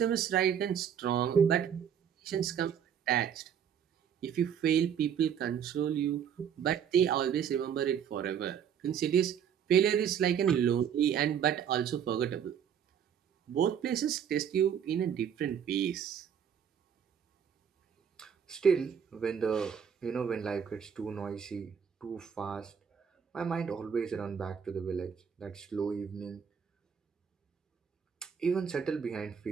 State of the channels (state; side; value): quieter; left; 8.1 dB